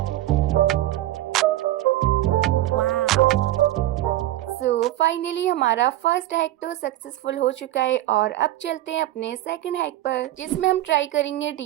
सो फाइनली हमारा फर्स्ट हैक तो सक्सेसफुल हो चुका है और अब चलते हैं अपने सेकंड हैक पर, जिसमें हम ट्राई करेंगे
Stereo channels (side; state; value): left; quieter; 14.9 dB